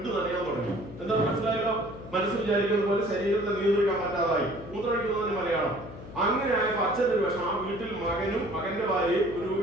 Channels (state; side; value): noise; left; hum, 14 dB below the sound